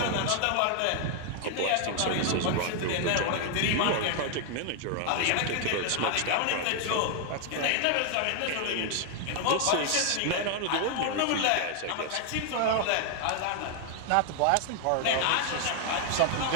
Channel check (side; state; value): both; different; correlation 0.00